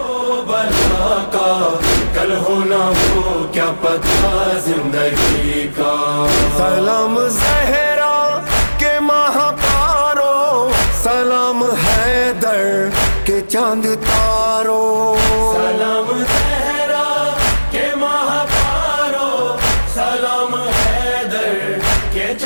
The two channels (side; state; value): both; inverted; correlation -1.00